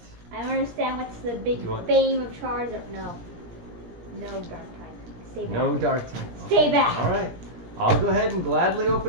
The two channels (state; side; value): late; left; 17 ms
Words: I don't understand what's the big You want- fame of Charizard. No. No dark type. Stay back. No dark type. Stay back. All right. I'll go ahead and gladly